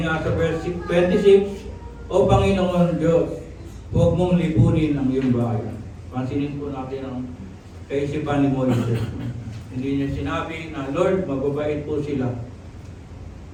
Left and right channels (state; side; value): identical; both; correlation 1.00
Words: nga sa verse 26, O Panginoon Diyos, huwag mong lipunin ang iyong bayan. Pansinin po natin ang kaisipan ni Moises. Hindi niya sinabi na, Lord, mababait po sila.